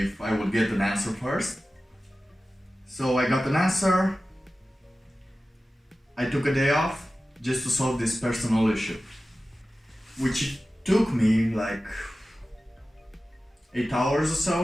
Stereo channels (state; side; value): normal; both; correlation 0.95